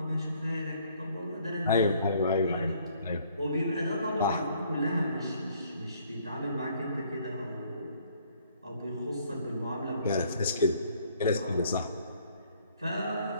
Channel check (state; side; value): inverted; both; correlation -0.62